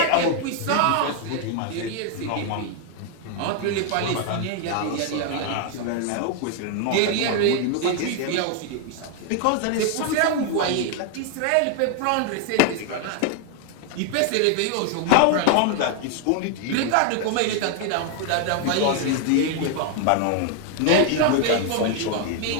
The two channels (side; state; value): both; different; correlation 0.00